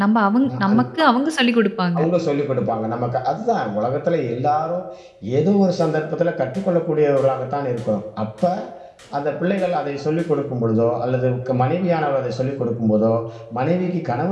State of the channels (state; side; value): identical; both; correlation 1.00